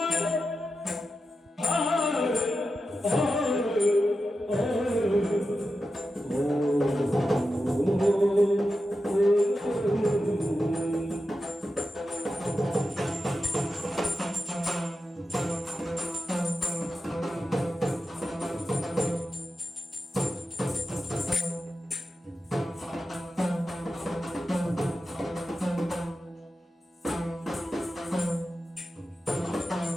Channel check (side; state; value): both; normal; correlation 0.90